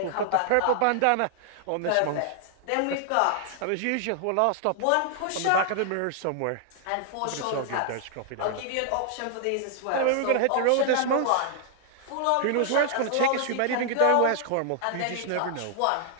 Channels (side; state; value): both; different; correlation 0.00